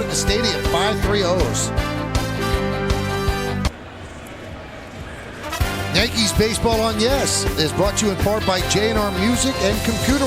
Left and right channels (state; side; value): identical; both; correlation 1.00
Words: the stadium. 5-3 O's. Yankees Baseball on Yes is brought to you in part by J&R Music and Computer